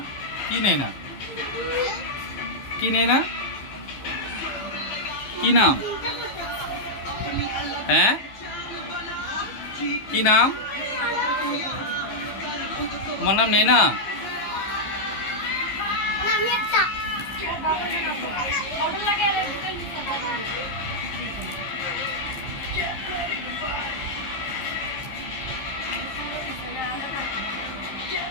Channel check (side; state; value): right; late; 15 ms